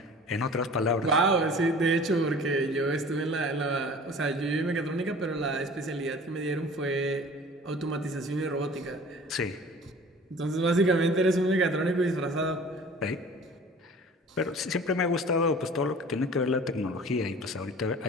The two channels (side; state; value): both; normal; correlation 0.44